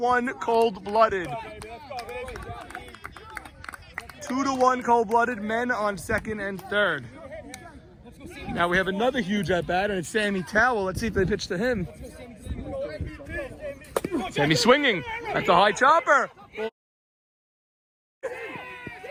cold-blooded. 2-1 cold-blooded. Men on second and third. Now we have another huge at-bat, and it's Sammy Towell. Let's see if they pitch to him. Sammy swinging. That's a high chopper.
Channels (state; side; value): identical; both; correlation 1.00